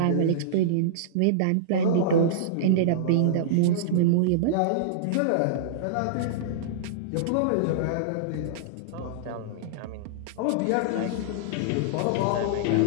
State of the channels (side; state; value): both; different; correlation -0.02